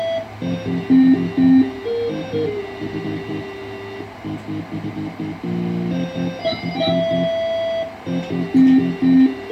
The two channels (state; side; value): identical; both; correlation 1.00